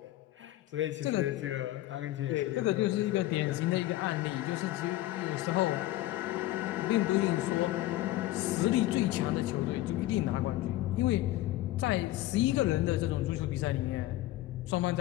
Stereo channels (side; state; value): right; quieter; 15.9 dB